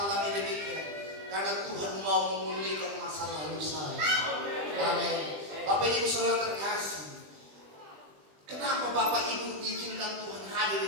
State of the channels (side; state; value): left; late; 20 ms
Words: demikian? Karena Tuhan mau memulihkan masa lalu saya. Amin. Bapak Ibu Saudara terkasih, kenapa Bapak Ibu diizinkan Tuhan hadir